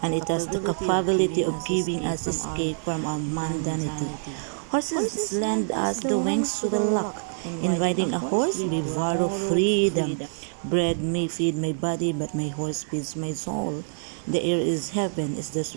and it has the capability of giving us escape from our mundanity. Horses lend us the wings to the luck. In riding a horse, we borrow freedom. Bread may feed my body, but my horse feeds my soul. The air is heaven as the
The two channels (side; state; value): left; silent; digital silence